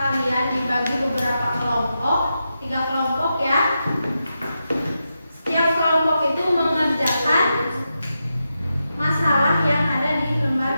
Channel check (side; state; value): both; inverted; correlation -0.88